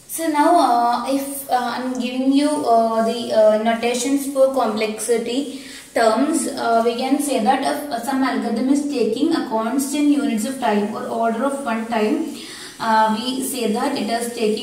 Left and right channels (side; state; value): both; identical; correlation 1.00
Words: So now if I'm giving you the notations for complexity terms, we can say that if some algorithm is taking a constant units of time or order of one time, we say that it is